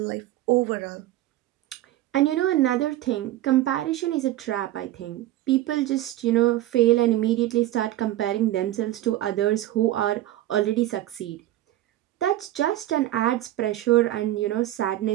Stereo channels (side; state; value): left; quieter; 14.6 dB